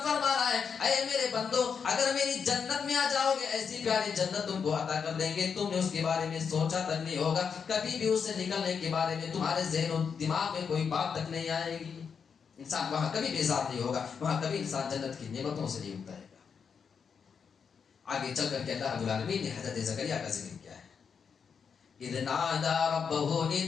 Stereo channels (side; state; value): right; quieter; 6.4 dB